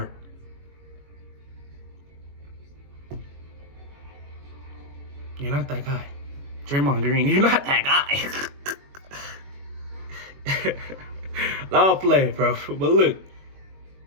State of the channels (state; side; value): late; left; 21 ms